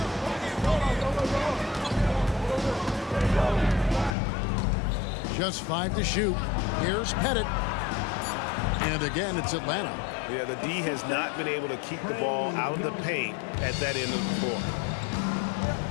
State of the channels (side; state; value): right; drops out; at 4.2 s